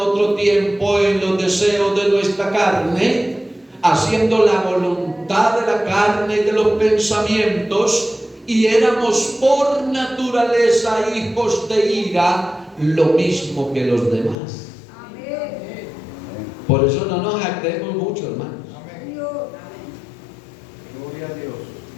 tiempo en los deseos de nuestra carne, haciendo la voluntad de la carne y de los pensamientos, y éramos por naturaleza hijos de ira, lo mismo que los demás. Amén. Por eso no nos jactemos mucho, hermanos. Amén. Gloria a Dios.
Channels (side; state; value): right; drops out; at 14.4 s